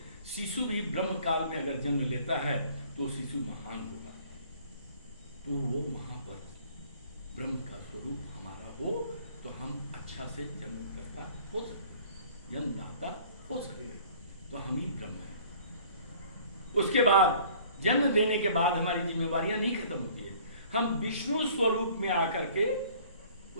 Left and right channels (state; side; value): inverted; both; correlation -0.53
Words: शिशु भी ब्रह्म काल में अगर जन्म लेता है तो शिशु महान होगा। तो वो वहां पर ब्रह्म का स्वरूप हमारा हो तो हम अच्छा से जन्मकर्ता हो सकते, जन्मदाता हो सकते, तो हम ही ब्रह्म हैं। उसके बाद जन्म देने के बाद हमारी जिम्मेवारियां नहीं खत्म होती है। हम विष्णु स्वरूप में आकर के